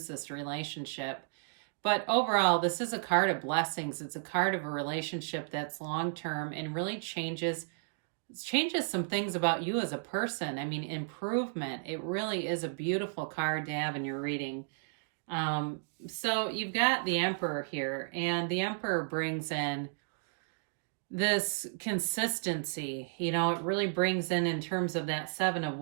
this relationship. But overall, this is a card of blessings. It's a card of a relationship that's long term and really changes some things about you as a person. I mean, improvement. It really is a beautiful card to have in your reading. So you've got the Emperor here, and the Emperor brings in this consistency. It really brings in terms of that Seven of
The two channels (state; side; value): silent; left; digital silence